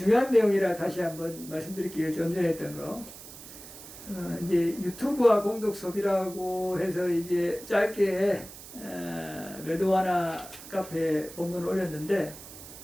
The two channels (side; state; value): right; noise; hiss, 15 dB below the sound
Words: 내용이라 다시 한번 말씀드릴게요. 좀 전에 했던 거. 이제 유튜브와 공덕 소비라고 해서 이제 짧게 레드와나 카페 본문을 올렸는데,